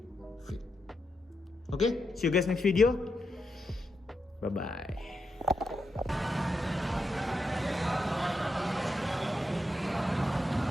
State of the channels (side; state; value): both; normal; correlation 0.84